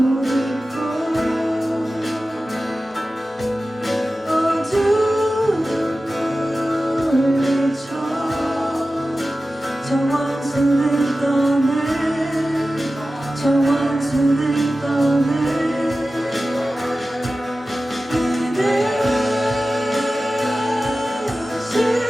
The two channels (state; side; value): normal; both; correlation 0.95